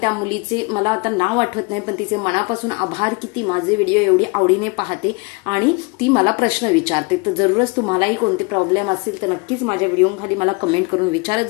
मुलीचे मला आता नाव आठवत नाही, पण तिचे मनापासून आभार की ती माझे व्हिडिओ एवढी आवडीने पाहते आणि ती मला प्रश्न विचारते। तर जरूरच तुम्हालाही कोणते प्रॉब्लेम असतील तर नक्कीच माझ्या व्हिडिओ खाली मला कमेंट करून विचारत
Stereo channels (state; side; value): quieter; right; 28.9 dB